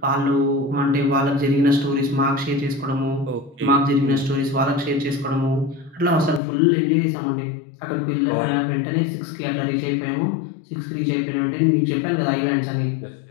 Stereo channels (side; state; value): right; drops out; at 6.4 s